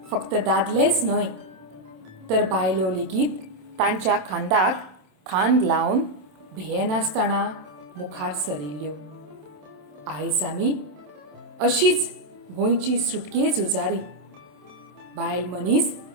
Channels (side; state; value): left; late; 27 ms